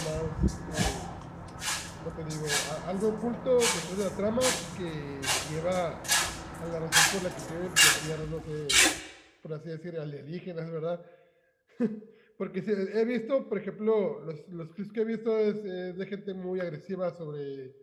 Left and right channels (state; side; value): identical; both; correlation 1.00